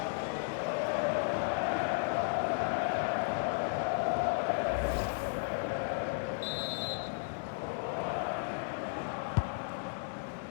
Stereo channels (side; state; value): right; silent; digital silence